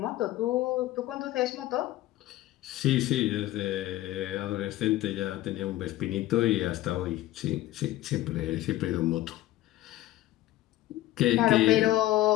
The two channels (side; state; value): right; quieter; 15.5 dB